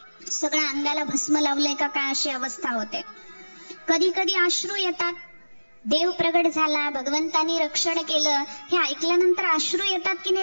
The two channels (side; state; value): both; inverted; correlation -1.00